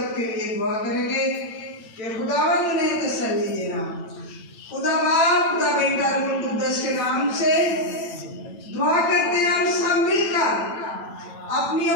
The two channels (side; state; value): right; late; 9.0 ms